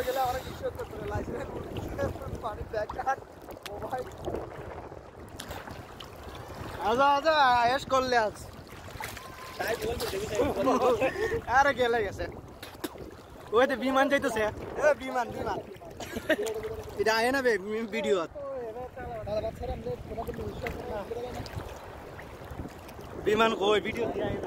গেলে অনেক কিছু করতে হবে লাইসেন্স পানি ব্যাগ কার্ড মোবাইল আজা আয়েশ করলে আজ তাই বলতে দেবি আরে গেলে গেছে ওই তো বিমান যাইতেছে এ বিমান এটা আয় না বে ভিডিও বিমান কই ভিডিও দিয়ে আয়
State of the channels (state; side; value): identical; both; correlation 1.00